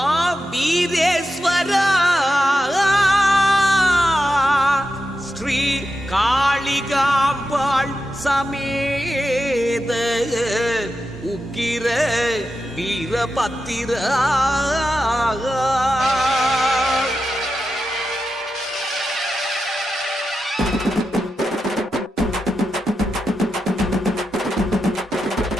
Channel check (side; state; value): both; normal; correlation 0.89